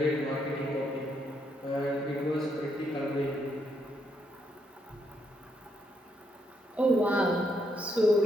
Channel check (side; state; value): both; normal; correlation 0.76